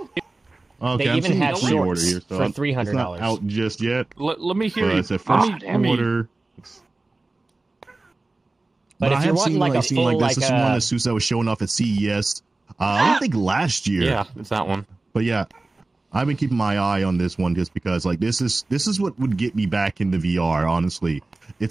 Okay, They I'm even seeing have the pre-order shorts here, so for it's $300. not out just yet. Let me hear But you. it's a first order. But if I you're have wanting seen like a seen full like this. This is one of like the suits that was showing off at CES. I don't think last year. Yeah, it's that one. But yeah, I've been keeping my eye on this one just because like this is what would get me back into VR. Honestly,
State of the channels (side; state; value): left; quieter; 3.2 dB